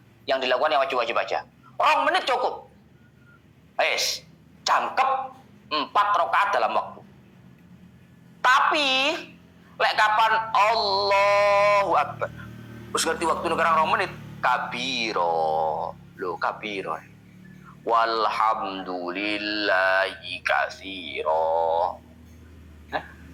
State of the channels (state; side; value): identical; both; correlation 1.00